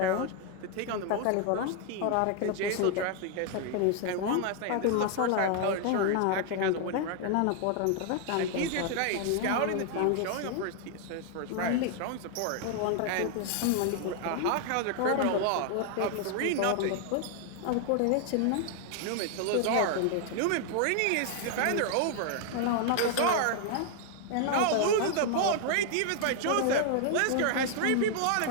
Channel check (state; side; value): different; both; correlation 0.00